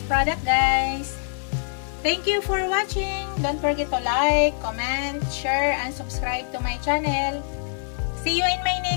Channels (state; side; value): silent; right; 62 dB below the other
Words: product guys. Thank you for watching. Don't forget to like, comment, share, and subscribe to my channel. See you in my